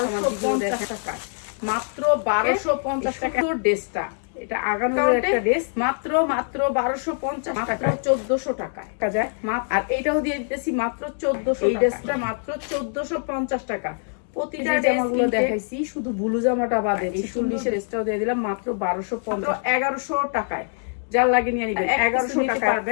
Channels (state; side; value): silent; right; 63 dB below the other